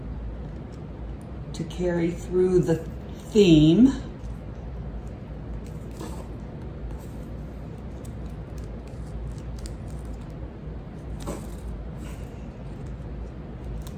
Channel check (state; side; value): identical; both; correlation 1.00